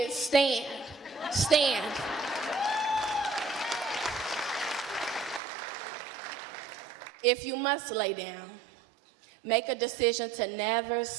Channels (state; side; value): drops out; left; at 5.4 s